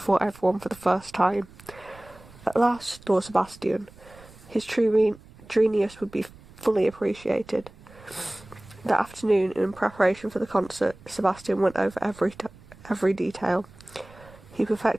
everyone for the first time. At last, thought Sebastian, his true genius would be fully appreciated. That afternoon, in preparation for the concert, Sebastian went over every detail. He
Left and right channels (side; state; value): right; noise; rumble, 22 dB below the sound